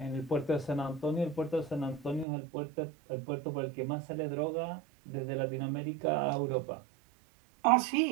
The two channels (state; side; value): drops out; left; at 2.2 s